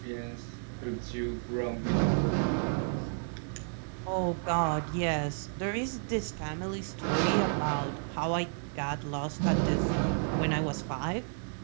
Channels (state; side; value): silent; left; 55 dB below the other